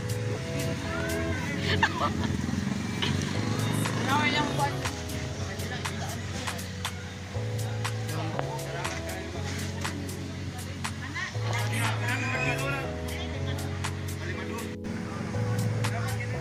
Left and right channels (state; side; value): identical; both; correlation 1.00